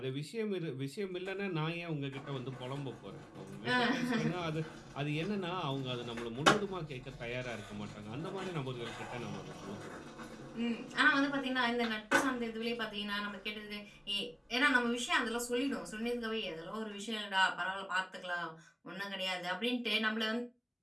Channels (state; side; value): identical; both; correlation 1.00